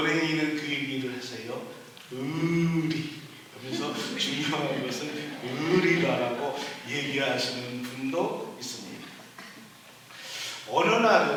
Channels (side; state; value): both; identical; correlation 1.00